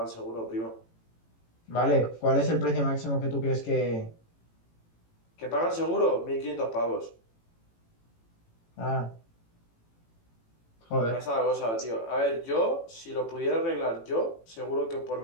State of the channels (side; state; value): right; late; 18 ms